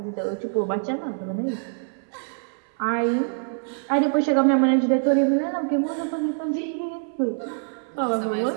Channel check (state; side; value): silent; left; 62 dB below the other